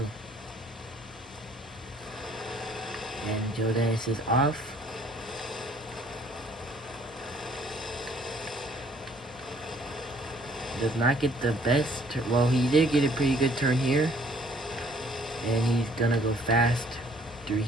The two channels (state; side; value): normal; both; correlation 0.60